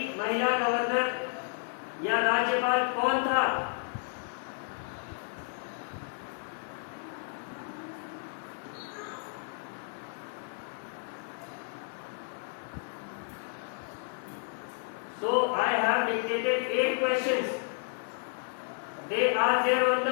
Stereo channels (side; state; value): right; silent; 56 dB below the other